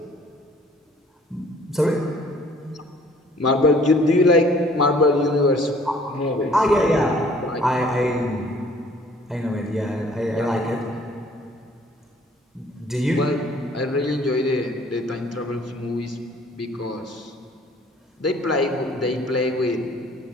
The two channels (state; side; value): normal; both; correlation 0.56